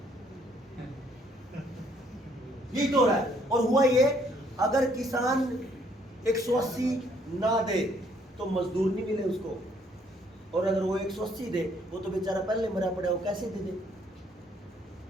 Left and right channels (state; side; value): normal; both; correlation 0.66